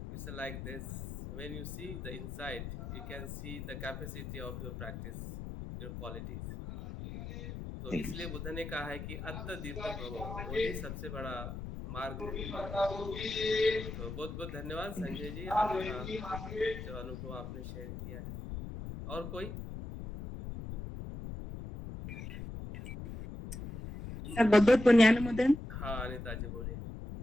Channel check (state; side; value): noise; left; rumble, 7 dB below the sound